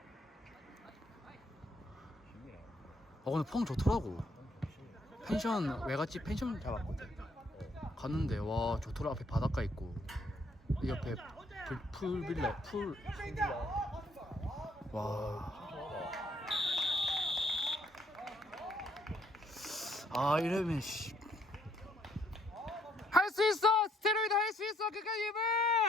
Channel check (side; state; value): both; normal; correlation 0.68